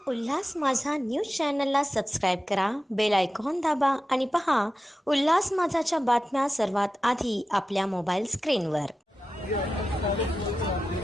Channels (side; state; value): both; normal; correlation 0.93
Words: उल्हास माझा न्यूज चॅनलला सबस्क्राईब करा, बेल आयकॉन दाबा आणि पहा उल्हास माझाच्या बातम्या सर्वात आधी आपल्या मोबाईल स्क्रीनवर.